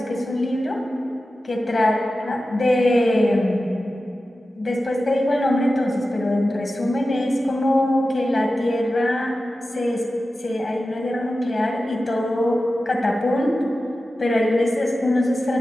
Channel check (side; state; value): both; normal; correlation 0.94